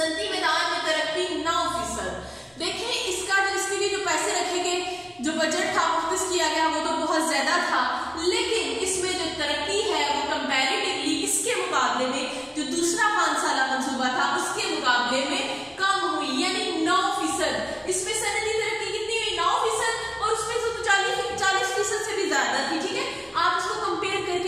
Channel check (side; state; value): both; identical; correlation 1.00